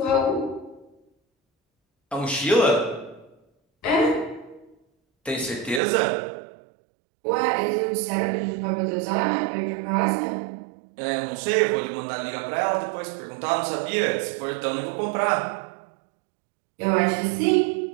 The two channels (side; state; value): left; drops out; at 5.8 s